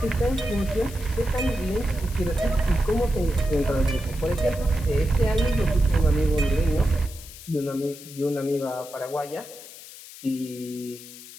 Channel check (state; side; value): noise; left; hiss, 16 dB below the sound